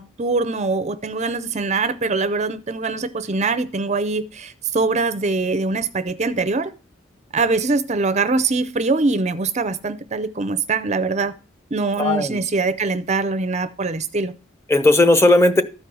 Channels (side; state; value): both; normal; correlation 0.46